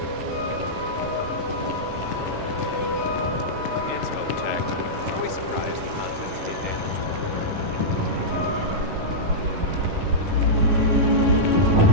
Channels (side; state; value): left; late; 10 ms